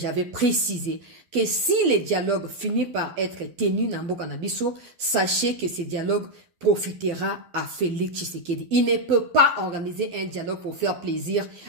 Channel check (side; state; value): left; late; 12 ms